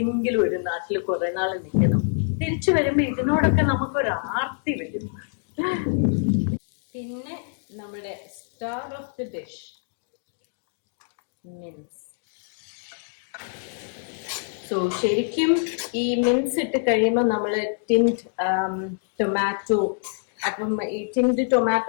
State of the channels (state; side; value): silent; right; digital silence